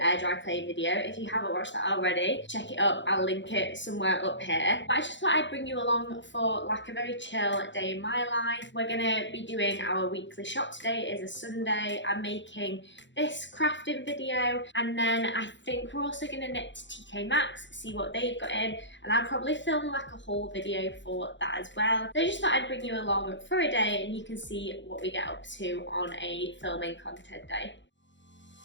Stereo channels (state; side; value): late; right; 0.53 ms